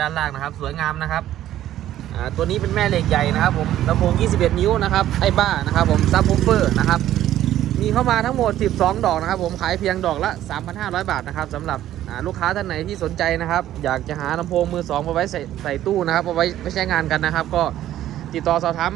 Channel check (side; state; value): left; quieter; 12.7 dB